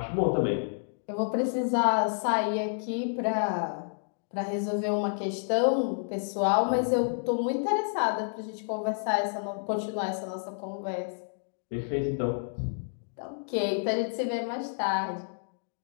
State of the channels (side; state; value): right; silent; digital silence